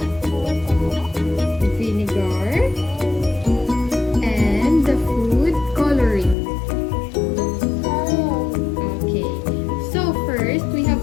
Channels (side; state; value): right; drops out; at 6.4 s